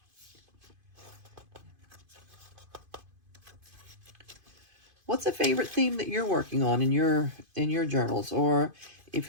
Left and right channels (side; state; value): left; late; 2.5 ms